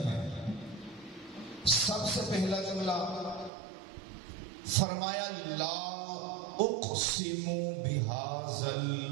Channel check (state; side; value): drops out; left; at 3.5 s